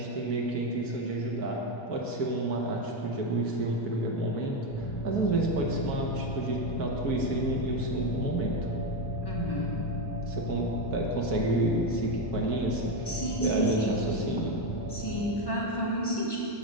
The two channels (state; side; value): late; right; 1.1 ms